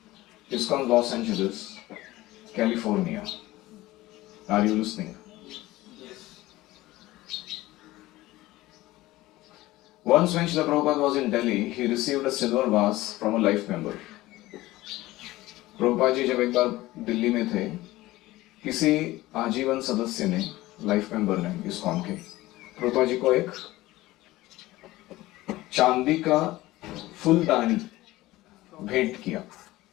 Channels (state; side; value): quieter; right; 17.8 dB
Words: ISKCON Los Angeles, California. Are you listening? Once when Srila Prabhupada was in Delhi, he received a silver vase from a life member. Prabhupada ji जब एक बार दिल्ली में थे, किसी आजीवन सदस्य ने, लाइफ मेंबर ने ISKCON के, प्रभुपाद जी को एक चांदी का फूलदानी भेंट किया.